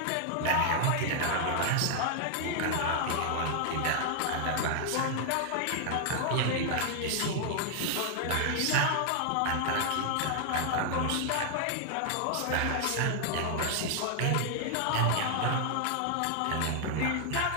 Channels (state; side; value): different; both; correlation 0.00